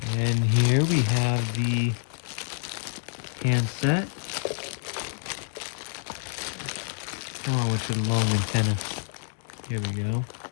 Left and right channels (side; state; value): right; silent; digital silence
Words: And here we have the handset. Come on with your long antenna. Here we go.